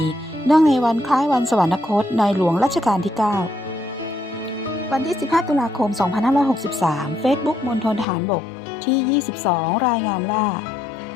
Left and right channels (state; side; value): drops out; right; at 8.1 s